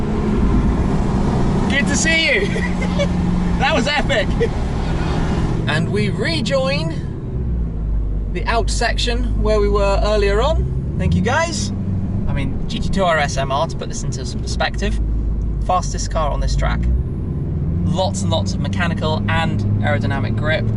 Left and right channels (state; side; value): identical; both; correlation 1.00